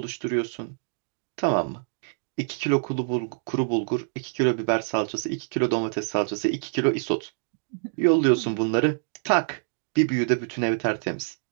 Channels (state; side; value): silent; left; digital silence